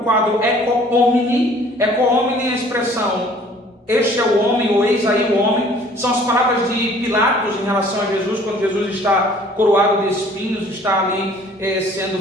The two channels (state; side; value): normal; both; correlation 0.54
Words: Ecce Homini. Ecce Homini é a expressão "este é o homem" ou "eis aí o homem". São as palavras de Pilatos em relação a Jesus, quando Jesus está coroado de espinhos, está ali